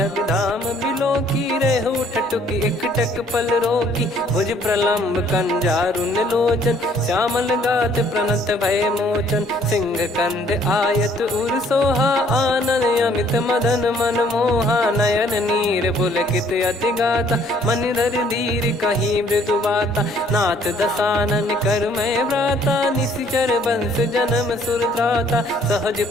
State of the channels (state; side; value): normal; both; correlation 0.61